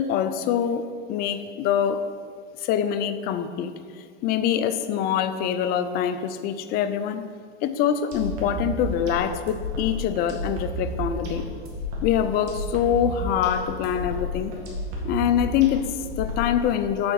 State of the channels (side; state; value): right; quieter; 7.6 dB